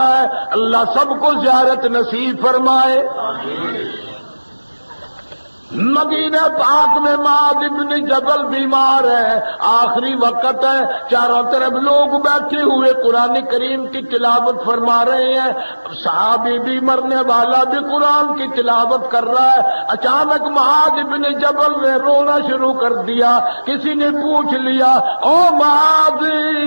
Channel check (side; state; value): both; inverted; correlation -1.00